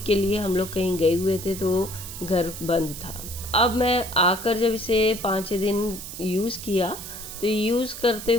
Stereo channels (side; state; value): right; noise; hiss, 10 dB below the sound